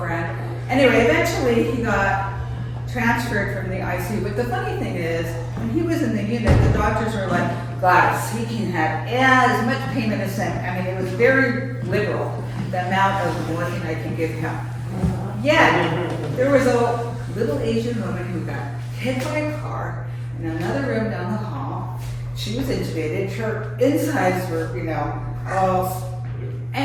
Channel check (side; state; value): both; identical; correlation 1.00